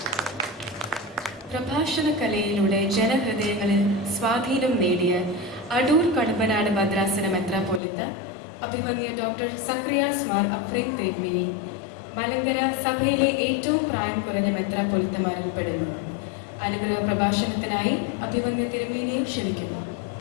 പ്രഭാഷണ കലയിലൂടെ ജനഹൃദയങ്ങളിൽ സ്വാധീനം നേടിയ അടൂർ കടമ്പനാട് ഭദ്രാസന മെത്രാപ്പോലിത്ത അഭിമന്യ ഡോക്ടർ സക്രിയാസ് മാർ അഫ്രീൻ തിരുമേനി മലങ്കര സഭയിലെ ഏറ്റവും പ്രായം കുറഞ്ഞ മെത്രാപ്പോലിത്തമാരിൽ പെടുന്നു. അനുഗ്രഹ പ്രഭാഷണത്തിനായി അഭിമന്യ തിരുമേനിയെ ക്ഷണിക്കുന്നു.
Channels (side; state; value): right; drops out; at 7.8 s